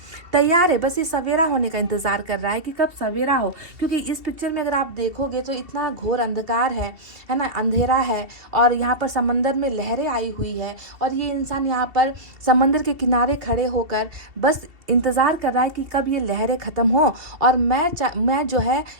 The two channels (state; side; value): late; left; 2.7 ms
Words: तैयार है। बस ये सवेरा होने का इंतजार कर रहा है कि कब सवेरा हो, क्योंकि इस पिक्चर में अगर आप देखोगे तो इतना घोर अंधकार है ना, अंधेरा है और यहाँ पर समंदर में लहरें आई हुई है और ये इंसान यहाँ पर समंदर के किनारे खड़े होकर बस इंतज़ार कर रहा है कि कब ये लहरें ख़त्म हो और मैं जो है